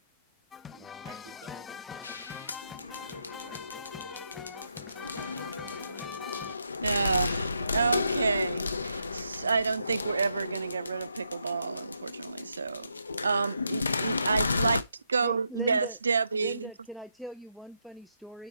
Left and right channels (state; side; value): inverted; both; correlation -0.80